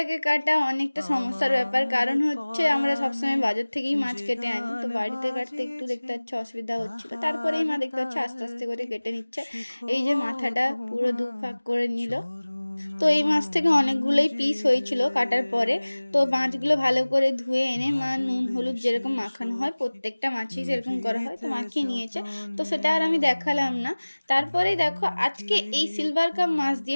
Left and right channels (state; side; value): inverted; both; correlation -1.00